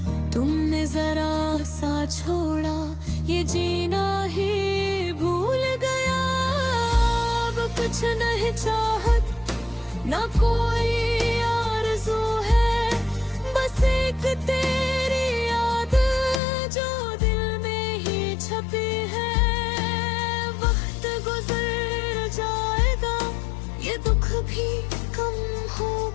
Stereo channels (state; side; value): drops out; right; at 16.4 s